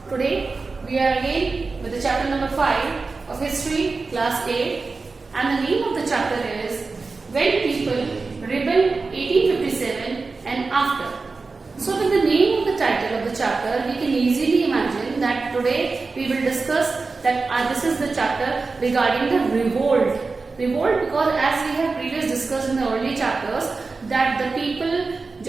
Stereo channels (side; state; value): left; quieter; 4.0 dB